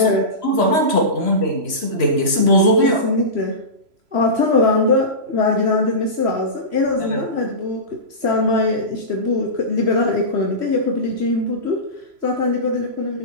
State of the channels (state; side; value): late; left; 3.0 ms